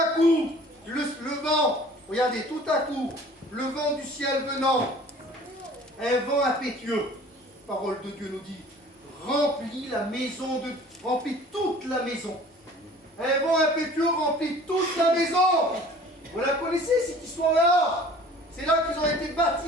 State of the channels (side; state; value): both; normal; correlation 0.48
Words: coup, le vent, regardez, tout à coup, le vent du ciel venant, un vent impétueux, la parole de Dieu nous dit, remplit toute la maison. Un vent impétueux remplit toute la maison. Vous la connaissez cette histoire-là? C'est là qu'ils ont été